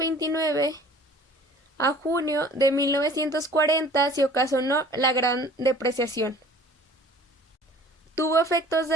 a junio de 1940 se ocasionó la Gran Depreciación. Tuvo efectos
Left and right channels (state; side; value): normal; both; correlation 0.49